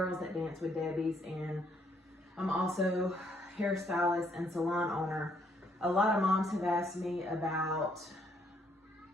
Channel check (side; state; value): both; normal; correlation 0.69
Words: that dance with Debbie's, and I'm also hairstylist and salon owner. A lot of moms have asked me about